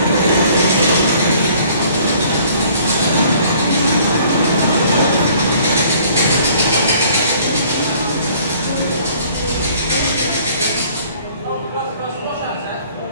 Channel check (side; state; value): both; inverted; correlation -0.56